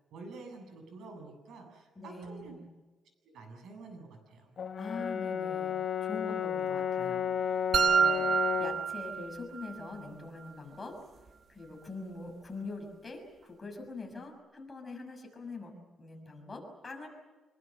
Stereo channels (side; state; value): both; normal; correlation 0.69